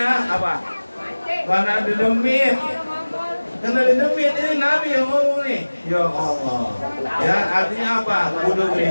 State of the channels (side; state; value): both; inverted; correlation -1.00